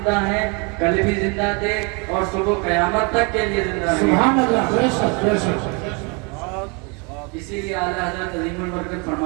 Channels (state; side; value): quieter; left; 32.0 dB